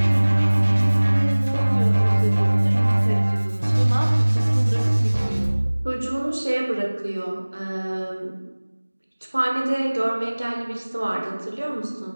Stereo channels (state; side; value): inverted; both; correlation -1.00